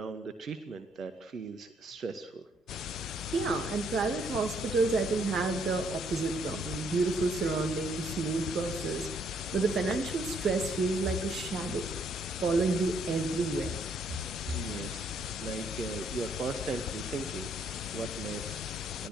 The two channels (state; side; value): normal; both; correlation 0.69